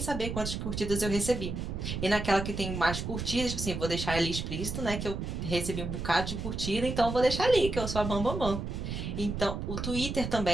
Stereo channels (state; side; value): noise; right; rumble, 4 dB below the sound